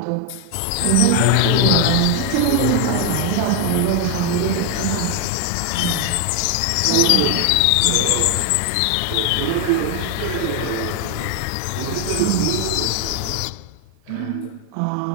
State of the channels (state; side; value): different; both; correlation 0.01